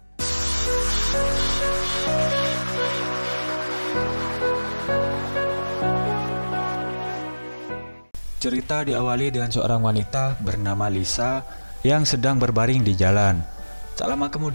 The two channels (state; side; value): inverted; both; correlation -1.00